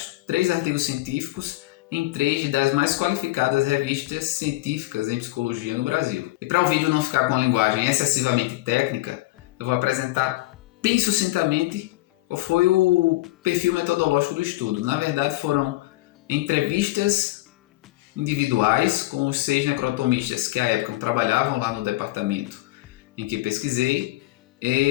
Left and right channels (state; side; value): quieter; right; 18.9 dB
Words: 3 artigos científicos em 3 das mais qualificadas revistas científicas em psicologia no Brasil. E para o vídeo não ficar com a linguagem excessivamente técnica, eu vou apresentar bem sucintamente qual foi o perfil metodológico do estudo. Na verdade, foram entrevistas individuais com os 6 necrotomistas que à época trabalhavam lá no departamento em que pesquisei,